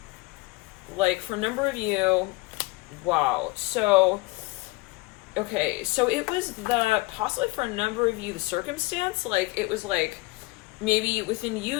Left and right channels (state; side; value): quieter; right; 23.3 dB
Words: Like for a number of you, wow. So, okay, so it was possibly for a number of you, the circumstance, like it was like maybe within you,